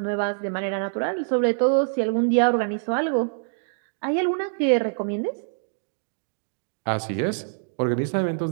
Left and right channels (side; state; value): left; silent; digital silence